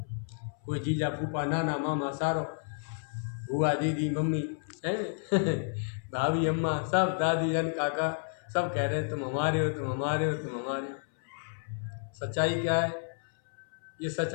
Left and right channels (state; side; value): silent; right; 57 dB below the other